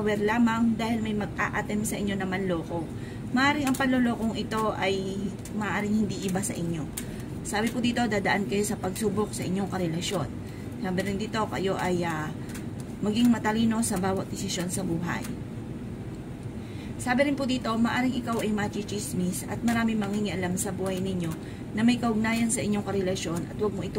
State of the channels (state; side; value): identical; both; correlation 1.00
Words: lamang dahil may mag-a-attempt sa inyo na manloko. Maaring ang panlolokong ito ay maaring hindi iba sa inyo. Sabi po dito, dadaan kayo sa pagsubok sa inyong karelasyon. Sabi rin dito, kayo ay maging matalino sa bawat desisyon sa buhay. Sabi rin po dito, maaring ikaw ay machichismis at marami mangingialam sa buhay ninyo na may kaugnayan sa inyong karelasyon at huwag mo